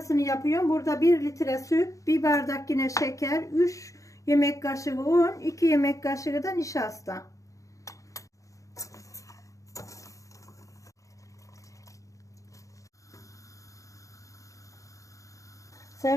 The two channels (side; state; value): right; late; 0.16 ms